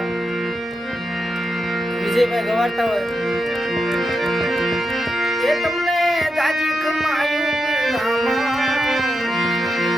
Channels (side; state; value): both; normal; correlation 0.86